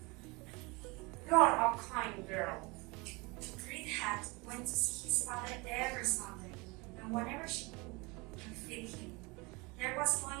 You are a kind girl. Red Hat went to see his father every Sunday, and whenever she could and fed him, there was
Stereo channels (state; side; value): quieter; left; 26.4 dB